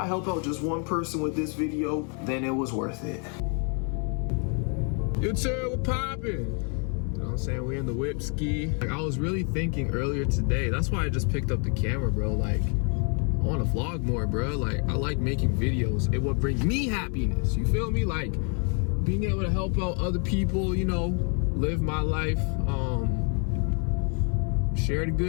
help out just one person with this video, then it was worth it. You two, we're popping. You know what I'm saying? We in the whip ski. Like, I was really thinking earlier today, that's why I just picked up the camera, bro. Like, I want to vlog more, bro. Like, I like making videos. It would bring me happiness. You feel me? Like, being able to help out other people, you know, live my life, share the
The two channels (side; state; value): right; quieter; 39.3 dB